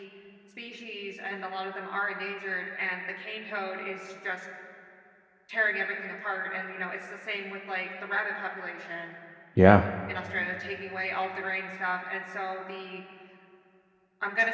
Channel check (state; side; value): identical; both; correlation 1.00